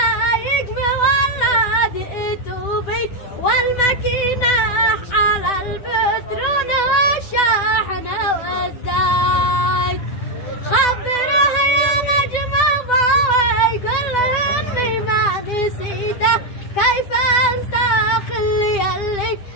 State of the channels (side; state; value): right; late; 10 ms